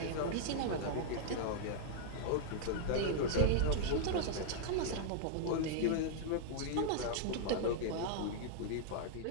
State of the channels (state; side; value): different; both; correlation -0.01